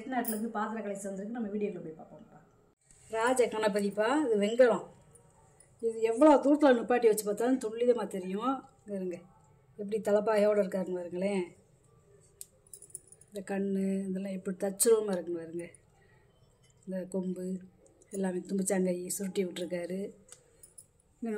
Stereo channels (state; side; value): identical; both; correlation 1.00